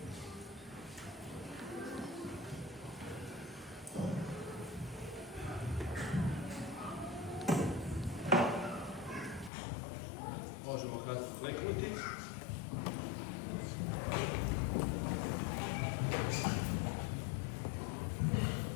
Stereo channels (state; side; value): drops out; right; at 9.5 s